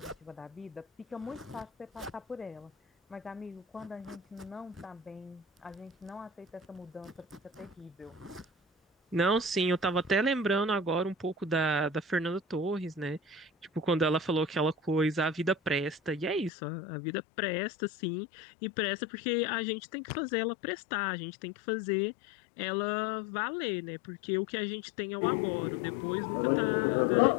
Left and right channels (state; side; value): drops out; right; at 16.5 s